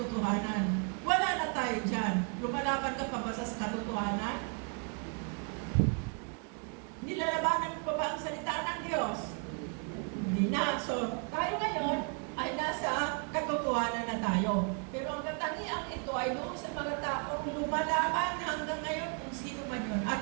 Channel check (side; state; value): left; quieter; 39.5 dB